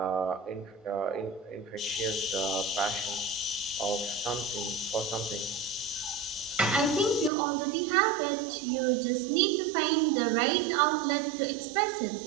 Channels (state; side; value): drops out; left; at 7.3 s